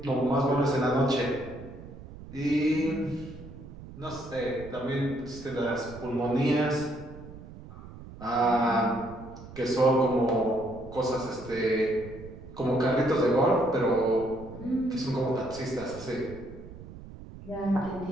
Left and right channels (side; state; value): right; noise; rumble, 15 dB below the sound